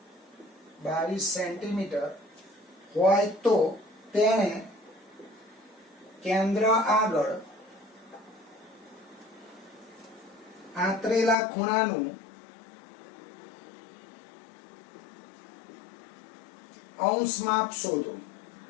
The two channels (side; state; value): right; drops out; at 11.4 s